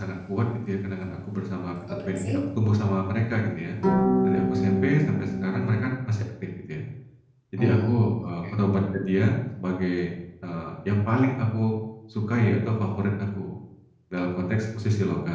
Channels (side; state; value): both; identical; correlation 1.00